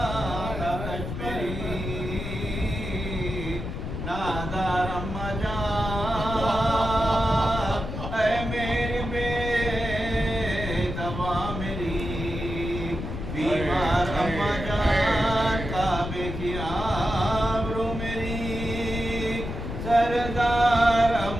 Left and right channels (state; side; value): noise; left; rumble, 6 dB below the sound